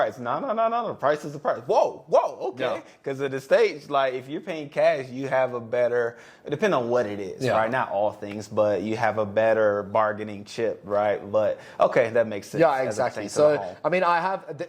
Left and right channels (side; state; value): both; identical; correlation 1.00